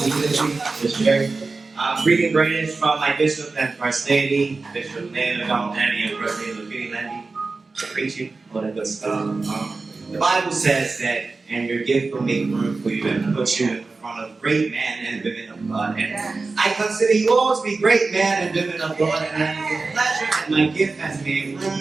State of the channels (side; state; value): left; quieter; 3.9 dB